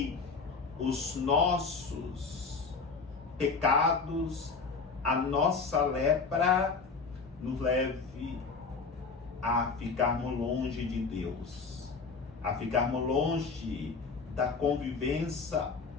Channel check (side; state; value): right; quieter; 4.6 dB